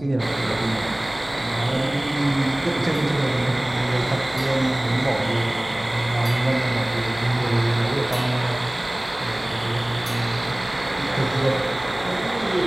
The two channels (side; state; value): right; noise; hum, 20 dB below the sound